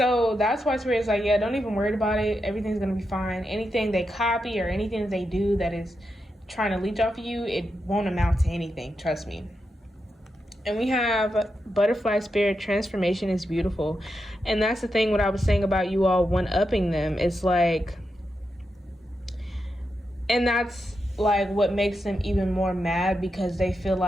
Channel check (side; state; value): both; normal; correlation 0.86